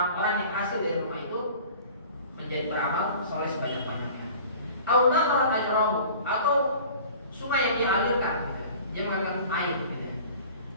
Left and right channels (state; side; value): inverted; both; correlation -0.45